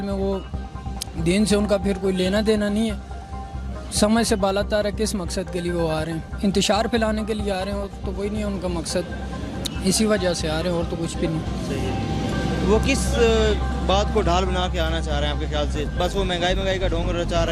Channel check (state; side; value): identical; both; correlation 1.00